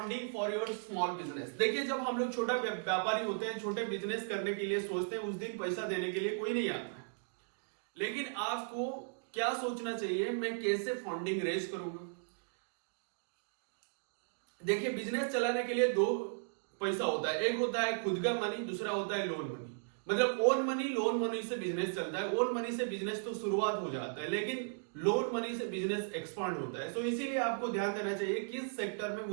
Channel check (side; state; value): left; silent; digital silence